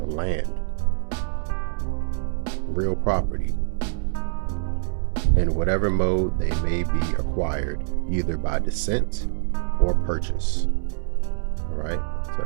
land, real property, in whatever mode they may be acquired, either by descent or purchase. All right, so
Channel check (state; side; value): silent; left; 62 dB below the other